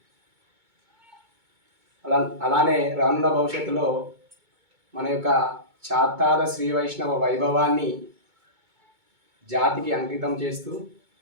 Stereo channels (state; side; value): late; left; 2.2 ms